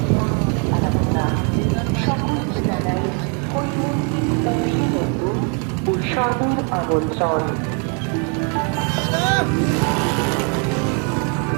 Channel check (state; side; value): quieter; left; 38.0 dB